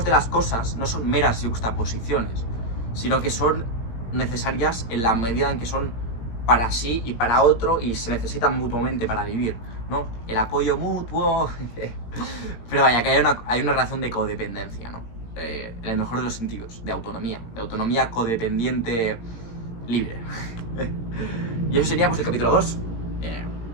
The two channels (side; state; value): right; late; 17 ms